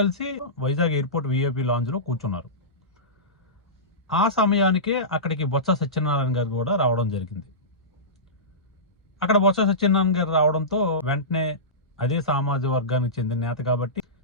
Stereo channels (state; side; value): normal; both; correlation -0.19